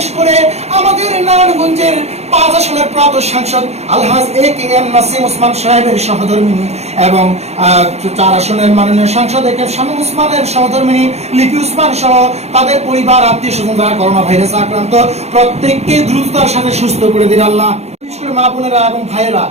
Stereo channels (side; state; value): left; late; 0.31 ms